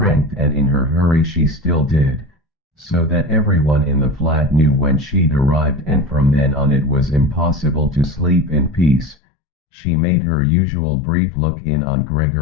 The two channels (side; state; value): right; drops out; at 9.2 s